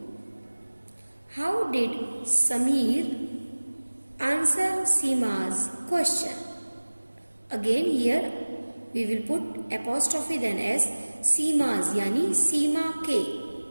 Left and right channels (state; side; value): inverted; both; correlation -1.00